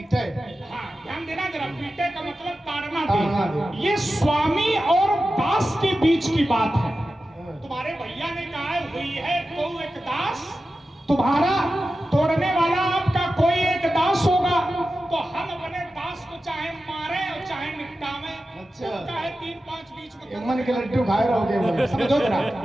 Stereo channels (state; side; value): normal; both; correlation 0.93